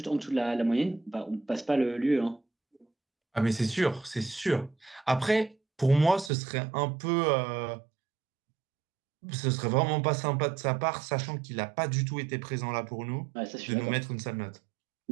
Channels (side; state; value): left; drops out; at 6.3 s